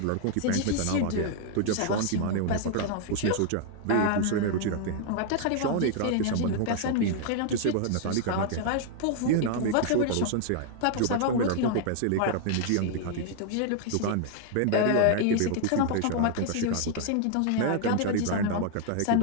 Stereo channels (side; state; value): both; different; correlation 0.00